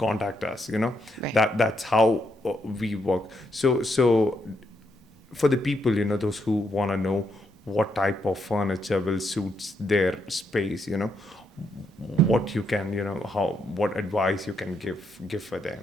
us, Right. That's how we work. So for the people, those who want to know what type of furniture will suit their space, what you can, what advice you can give for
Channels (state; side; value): normal; both; correlation 0.78